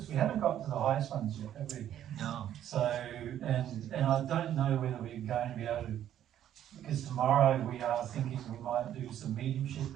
We haven't got to the highest ones yet, have we? No. So, and I don't know whether we're going to be able to, because tomorrow we are thinking we might do some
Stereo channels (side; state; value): left; quieter; 11.0 dB